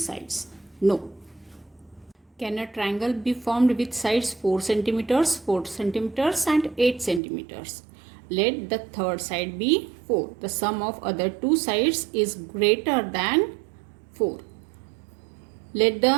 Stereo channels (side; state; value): left; drops out; at 7.2 s